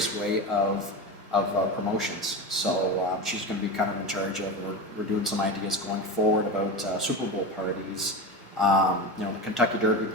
of promotions. So she's going to be kind of in charge of, we're doing some ideas going forward about Super Bowl parties, the Kentucky Derby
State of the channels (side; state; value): both; normal; correlation 0.24